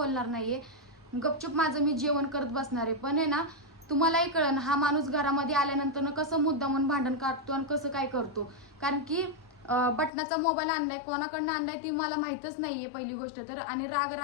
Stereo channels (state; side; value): drops out; right; at 10.1 s